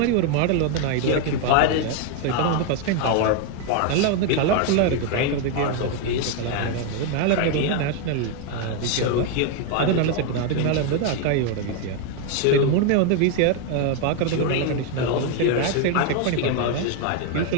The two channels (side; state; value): both; different; correlation 0.01